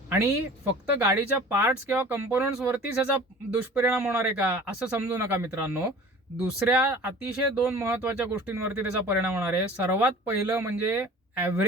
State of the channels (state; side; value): normal; both; correlation 0.43